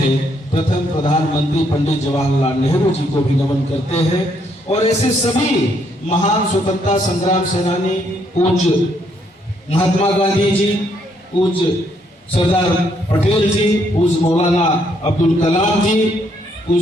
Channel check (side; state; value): both; normal; correlation 0.72